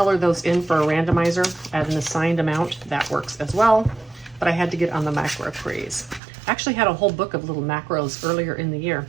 those in for a randomizer at an assigned amount. That works as well. But I had to get on the macro craze. I actually had a whole book of little macros earlier in the year,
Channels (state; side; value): drops out; left; at 6.2 s